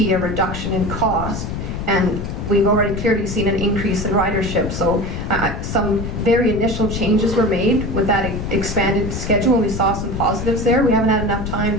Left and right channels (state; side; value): noise; left; rumble, 5 dB below the sound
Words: a reduction in cost, and we've already clearly seen an increase in ridership. So some very initial changes were made with that expanded schedule, and we saw some positives there. We haven't had enough time